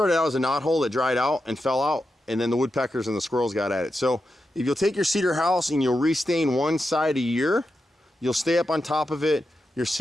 out as a knot hole that dried out and fell out, and then the woodpeckers and the squirrels got at it. So if you'll take your cedar house and you'll restain one side a year, you'll stay up on top of it. Your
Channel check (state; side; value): normal; both; correlation 0.88